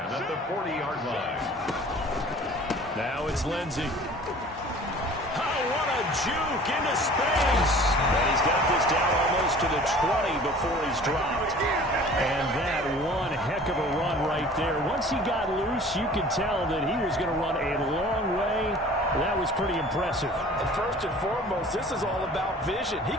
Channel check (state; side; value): normal; both; correlation 0.46